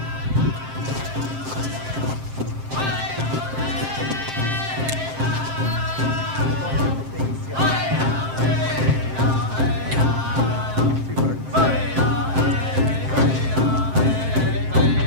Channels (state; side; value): late; left; 7.6 ms